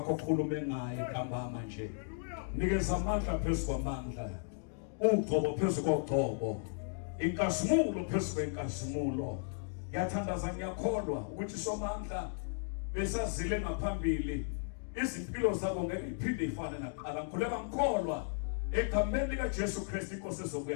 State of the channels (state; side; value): silent; right; digital silence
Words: okhulume ngaye ntambama nje. Nikeza amandla phezulu kwamandla. Ugcobo phezulu kogcobo. Inkazimulo phezulu kwenkazimulo. Ngiyathandaza ngiyakholwa ukuthi somandla besazile ngaphambili. Izimpilo zabo ngeke iphinde ifane naqala. Ngikhuleka ngikholwa egameni likaJesu Kristu inkosi